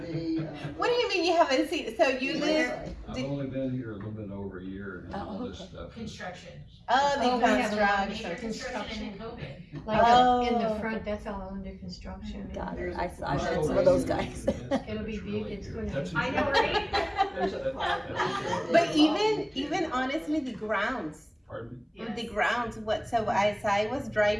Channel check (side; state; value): both; identical; correlation 1.00